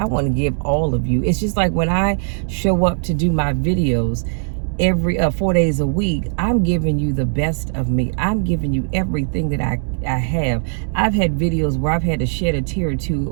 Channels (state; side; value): silent; left; 66 dB below the other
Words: want to give all of you. It's just like when I show up to do my videos, every 4 days a week, I'm giving you the best of me. I'm giving you everything that I have. I've had videos where I've had to shed a tear or